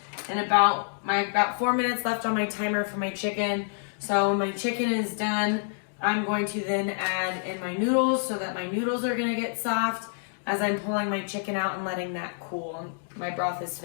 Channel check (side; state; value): right; silent; digital silence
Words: in about 4 minutes left on my timer for my chicken. So when my chicken is done, I'm going to then add in my noodles so that my noodles are going to get soft as I'm pulling my chicken out and letting that cool. My broth is